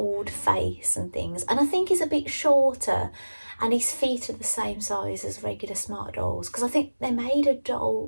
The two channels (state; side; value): inverted; both; correlation -1.00